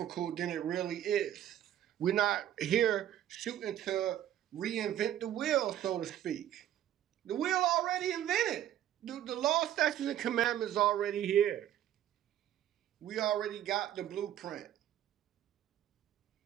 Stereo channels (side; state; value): left; quieter; 11.6 dB